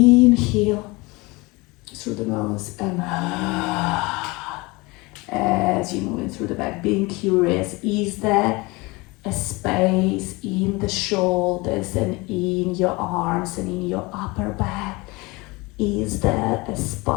through the nose and as you're moving through the back, being curious, is there a space in the shoulders and in your arms and in your upper back? Is there a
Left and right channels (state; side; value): quieter; right; 24.3 dB